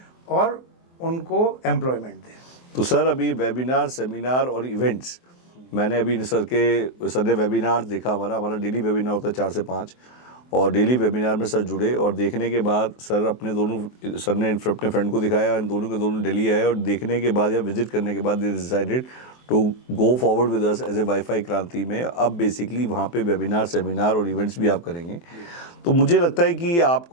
और उनको एम्प्लॉयमेंट दें। तो सर, अभी वेबिनार, सेमिनार और इवेंट्स, मैंने अभी सर ने वेबिनार देखा। हमारा डेली वेबिनार होता है 4 से 5, और डेली वेबिनार में सर जुड़े, और देखने के बाद सर ने अपने फ्रेंड को दिखाया, इन दोनों के दोनों दिल्ली आए, और देखने के बाद या विजिट करने के बाद they decided to go forward with us as a wifi Kranti में। अब बेसिकली वहाँ पे वेबिनार, सेमिनार और इवेंट्स भी आप करेंगे। तो मुझे लगता है कि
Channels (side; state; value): right; late; 23 ms